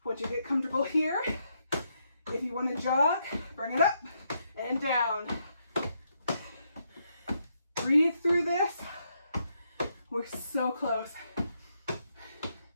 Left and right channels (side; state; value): both; inverted; correlation -0.78